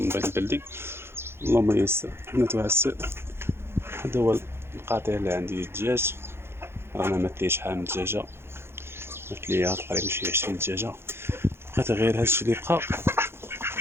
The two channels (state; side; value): late; left; 0.12 ms